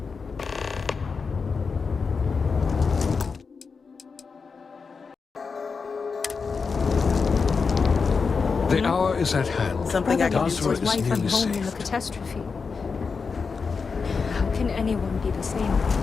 The hour is at hand. Something I can do Basra his is wife nearly and home in the saved. catastrophe. How can anyone be the same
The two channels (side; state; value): right; quieter; 5.1 dB